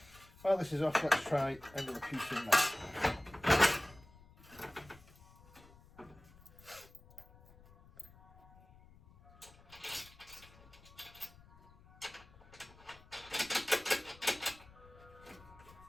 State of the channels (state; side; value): noise; left; rumble, 23 dB below the sound